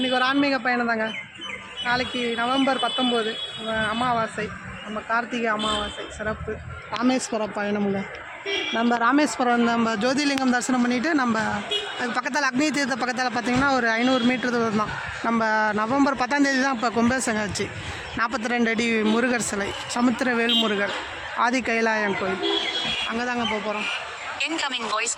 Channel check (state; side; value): identical; both; correlation 1.00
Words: ஒரு ஆன்மீக பயணம் தாங்க. நாளைக்கு நவம்பர் 19 அமாவாசை, நம்ம கார்த்திகை அமாவாசை சிறப்பு ராமேஸ்வரம் பயணமுங்க. நம்ம ராமேஸ்வரம் நம்ம ஜோதிலிங்கம் தரிசனம் பண்ணிவிட்டு நம்ம அது பக்கத்தில் அக்னி தீர்த்த பக்கத்தில் பார்த்திங்கன்னா ஒரு 500 மீட்டர் தூரம் தான். நம்ம நவம்பர் 10ஆம் தேதி தான் இப்போ கும்பாபிஷேகம் ஆச்சு. 42 அடி முருகர் சிலை, சமுத்திரவேல் முருகர், ஆதி கைலாயம் கோயில், அங்கே தாங்க போக போகிறோம்.